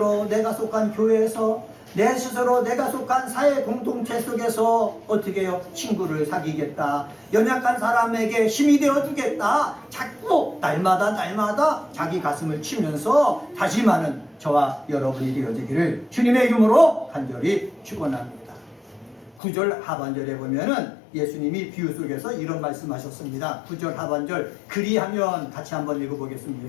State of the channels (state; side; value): drops out; right; at 19.4 s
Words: 내가 속한 교회에서 내 스스로 내가 속한 사회 공동체 속에서 어떻게 해요? 친구를 사귀겠다. 연약한 사람에게 힘이 되어주겠다. 자꾸 날마다 자기 가슴을 치면서 다짐하는 저와 여러분이 되어지기를 주님의 이름으로 간절히 축원합니다. 9절 하반절에 보면은 예수님이 비유 속에서 이런 말씀하셨습니다. 9절 하반절 그리하면 같이 한번